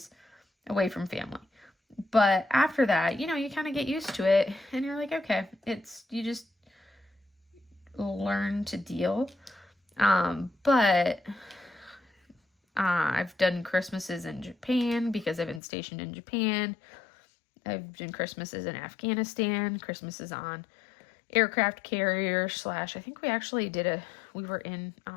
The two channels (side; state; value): right; drops out; at 15.6 s